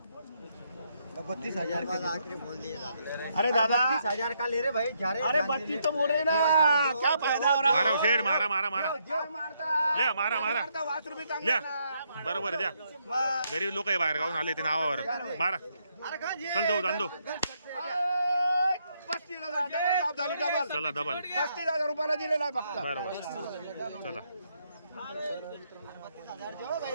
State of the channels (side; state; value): both; inverted; correlation -0.75